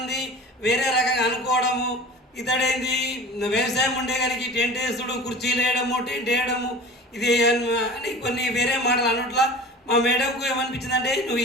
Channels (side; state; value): both; normal; correlation 0.38